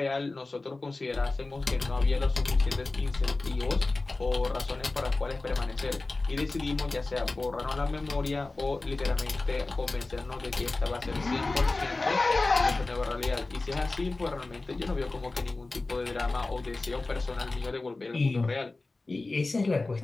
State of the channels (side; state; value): right; quieter; 3.3 dB